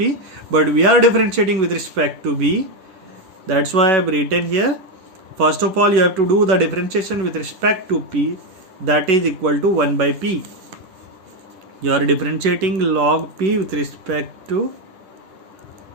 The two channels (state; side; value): late; left; 11 ms